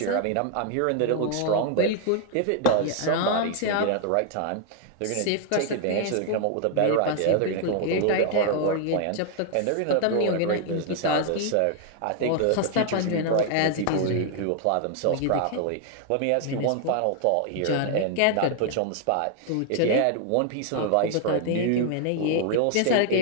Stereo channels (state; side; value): different; both; correlation 0.00